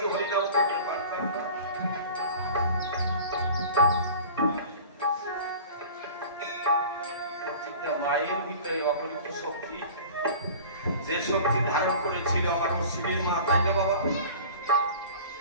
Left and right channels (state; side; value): inverted; both; correlation -0.41